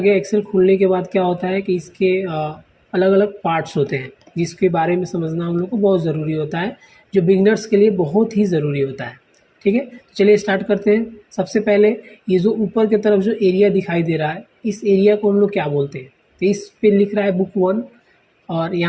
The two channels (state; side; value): identical; both; correlation 1.00